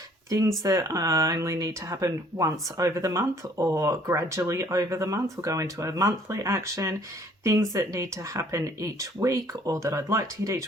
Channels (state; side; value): normal; both; correlation 0.59